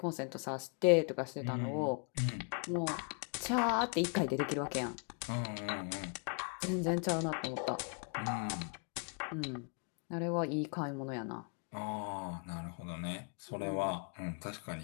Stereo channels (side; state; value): right; quieter; 39.2 dB